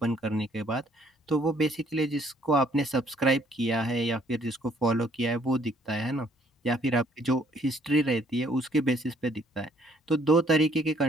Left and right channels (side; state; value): both; normal; correlation 0.64